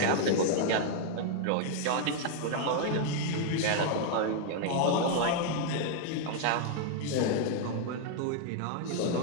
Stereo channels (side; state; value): both; different; correlation 0.00